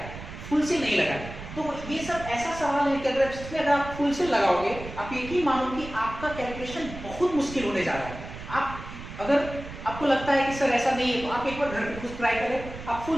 फुल सेल नहीं लगाए, तो ये सब ऐसा सवाल है कि अगर आप फुल सेल लगाओगे आप यकीन मानो कि आपका कैलकुलेशन बहुत मुश्किल होने जा रहा है। आप अगर आपको लगता है कि सर ऐसा नहीं है तो आप एक बार घर पे खुद ट्राई करें, आप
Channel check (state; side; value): noise; right; rumble, 12 dB below the sound